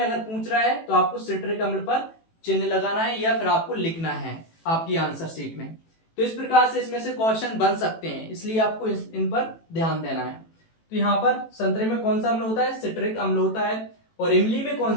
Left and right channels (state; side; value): late; right; 18 ms